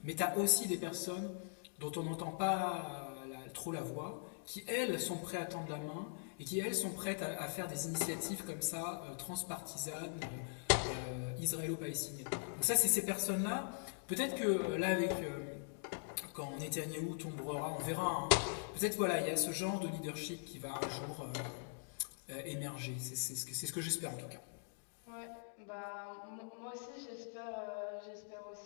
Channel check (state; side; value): silent; right; digital silence